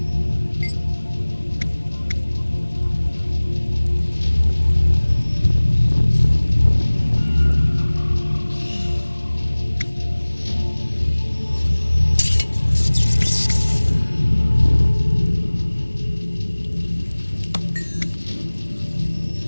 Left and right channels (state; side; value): inverted; both; correlation -1.00